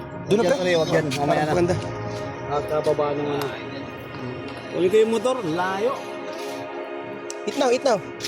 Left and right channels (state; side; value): identical; both; correlation 1.00